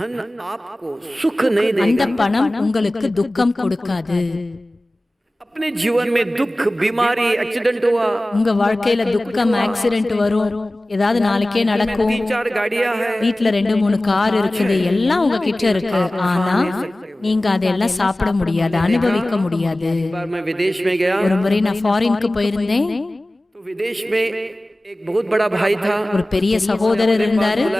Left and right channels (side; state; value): both; normal; correlation 0.97